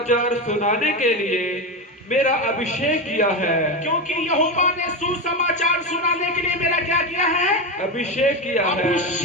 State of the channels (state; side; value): normal; both; correlation 0.16